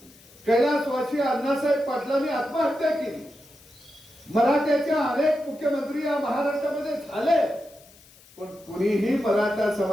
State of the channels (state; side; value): noise; left; hiss, 25 dB below the sound